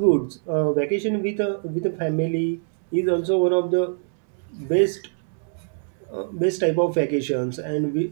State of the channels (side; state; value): left; silent; digital silence